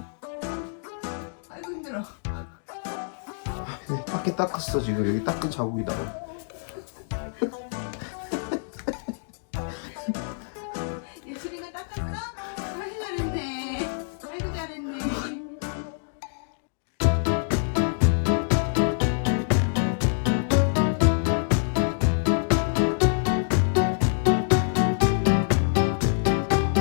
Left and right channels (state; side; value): silent; right; digital silence